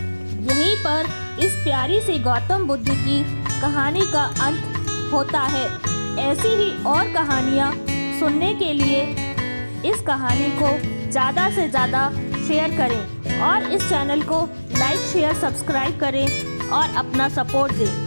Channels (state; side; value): inverted; both; correlation -1.00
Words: यहीं पर इस प्यारी सी गौतम बुद्ध की कहानी का अंत होता है। ऐसी ही और कहानियाँ सुनने के लिए इस कहानी को ज़्यादा से ज़्यादा शेयर करें और इस चैनल को लाइक शेयर सब्सक्राइब करें और अपना सपोर्ट